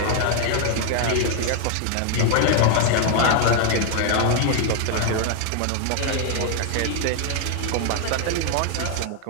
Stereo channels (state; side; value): different; both; correlation 0.01